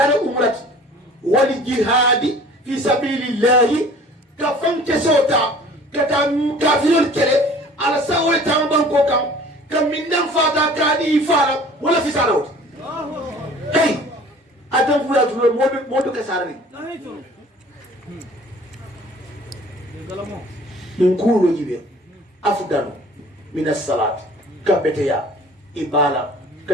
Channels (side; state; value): both; normal; correlation 0.48